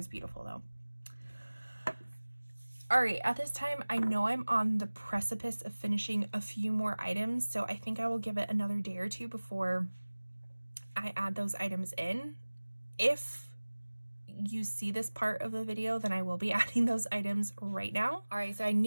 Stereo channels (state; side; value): inverted; both; correlation -1.00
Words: beautiful though. All right, at this time, I know I'm on the precipice of finishing a few more items, so I think I will give it another day or two before I add those items in. If you see this part of the video, then I will be adding those items right now. All right, so I